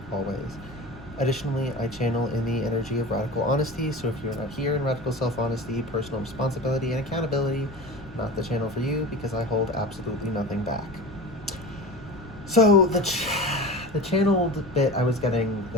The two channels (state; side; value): noise; left; rumble, 18 dB below the sound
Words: always. Additionally, I channel in the energy of radical honesty, so if you're not here in radical self-honesty, personal responsibility, and accountability, not the channel for you, because I hold absolutely nothing back. So, the channeled bit I was getting